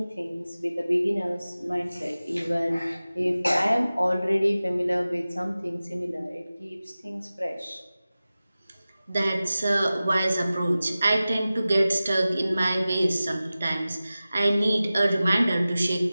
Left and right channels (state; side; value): inverted; both; correlation -0.96